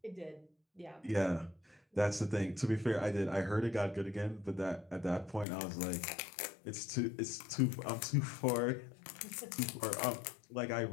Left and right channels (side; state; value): right; drops out; at 5.5 s